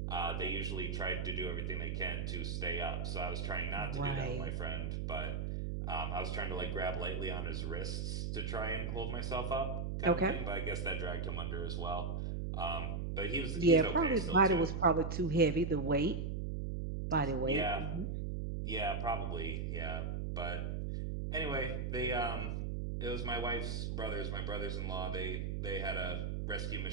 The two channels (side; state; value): right; noise; hum, 1 dB below the sound